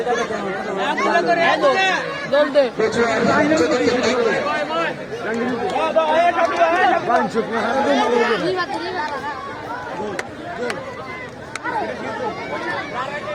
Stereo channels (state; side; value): identical; both; correlation 1.00